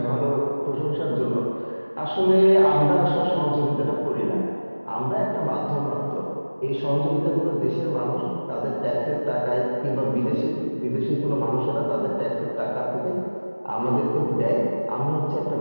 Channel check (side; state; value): both; inverted; correlation -1.00